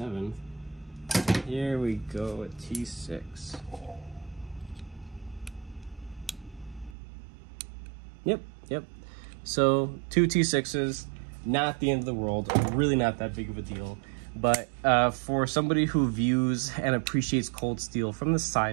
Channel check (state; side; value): drops out; left; at 7.0 s